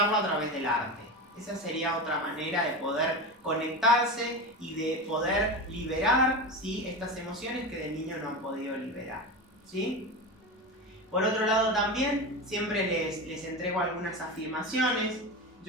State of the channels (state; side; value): normal; both; correlation 0.23